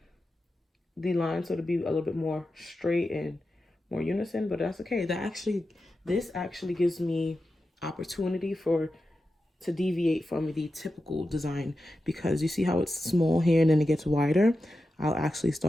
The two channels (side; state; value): both; normal; correlation 0.91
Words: the line so to be a little bit more straight and more unison, but that's okay. This actually gives me opportunity to deviate from the typical design, because you see how it's small here and then it gets wider. I'll actually